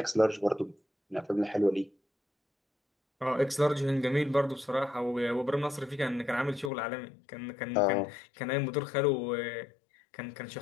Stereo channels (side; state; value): right; drops out; at 6.7 s